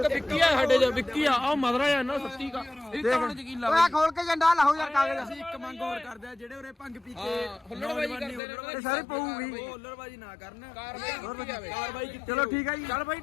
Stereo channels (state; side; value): drops out; right; at 8.4 s